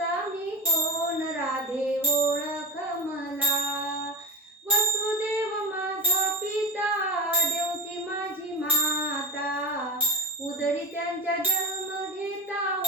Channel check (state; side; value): normal; both; correlation 0.21